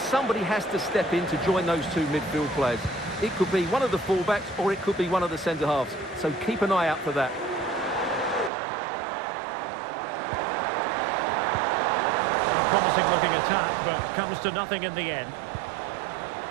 has to step in to join those two midfield players. It could be one of the fullbacks or it could be one of the centre-halves. So keep an eye out for that. A promising looking attack, but comes to nothing in the end.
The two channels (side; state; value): left; drops out; at 8.5 s